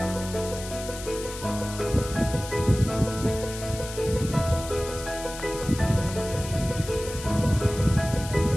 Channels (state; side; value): noise; left; hiss, 11 dB below the sound